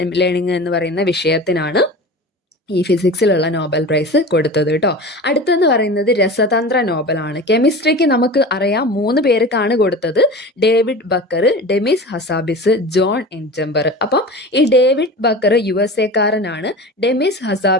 ലേണിംഗ് എന്ന് പറയുന്ന വിഷയത്തിനാണ് ഈ ഫിസിക്സിലുള്ള നോബൽ പ്രൈസ് കൊടുത്തത് കേട്ടോ. അടുത്തെന്ന് പറയുന്നത് രസതന്ത്ര നോബലാണ്. കെമിസ്ട്രിക്ക് നമുക്ക് അറിയാം 3 പേർക്കാണ് കൊടുത്തത്. David Baker, Demis Hassabis, John M Jumper. അപ്പം ഈ ഡേവിഡ് ബക്കർ USA കാരനാണ്, ഡെമിസ്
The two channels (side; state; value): both; normal; correlation 0.33